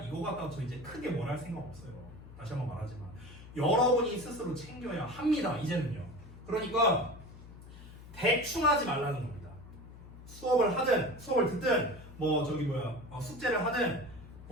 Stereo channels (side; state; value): left; noise; hum, 16 dB below the sound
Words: 이거 갖다가 저 이제 크게 뭘 할 생각 없어요. 다시 한번 말하지만 여러분이 스스로 챙겨야 합니다. 이제는요. 그러니까 대충 하지 말라는 겁니다. 수업을 하든 수업을 듣든 숙제를 하든